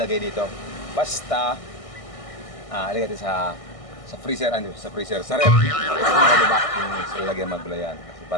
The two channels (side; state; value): right; late; 1.6 ms